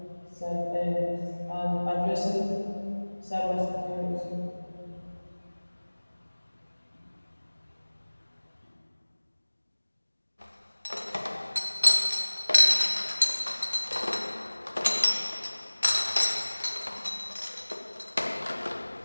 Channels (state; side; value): inverted; both; correlation -1.00